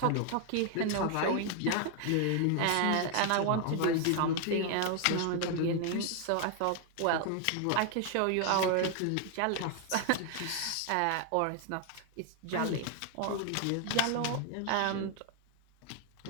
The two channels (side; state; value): both; different; correlation 0.01